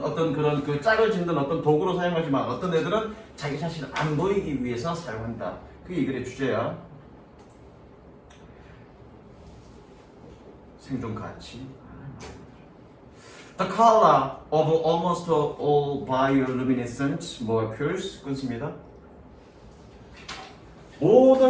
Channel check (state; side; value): identical; both; correlation 1.00